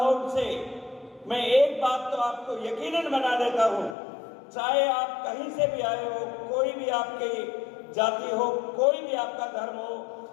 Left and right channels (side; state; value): right; drops out; at 4.0 s